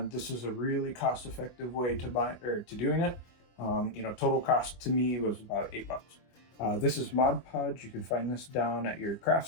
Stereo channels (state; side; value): late; right; 24 ms